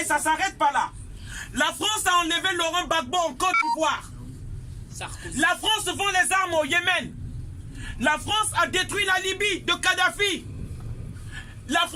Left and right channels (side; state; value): both; identical; correlation 1.00